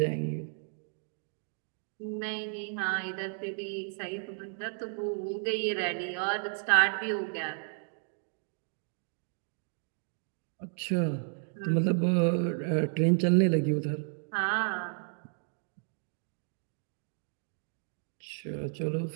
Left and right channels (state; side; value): silent; left; 56 dB below the other